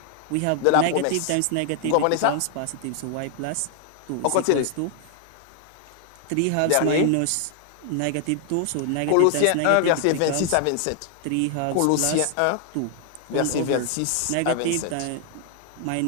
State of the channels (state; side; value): different; both; correlation 0.00